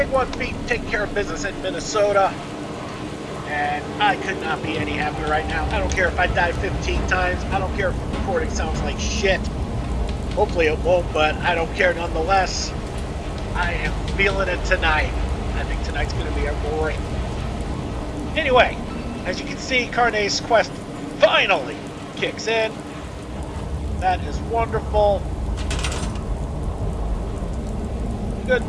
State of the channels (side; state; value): both; identical; correlation 1.00